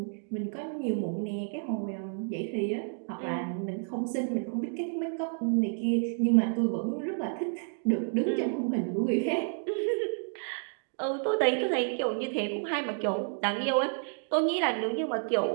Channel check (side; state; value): left; silent; 58 dB below the other